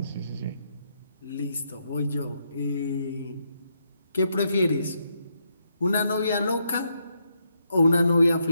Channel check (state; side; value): inverted; both; correlation -0.79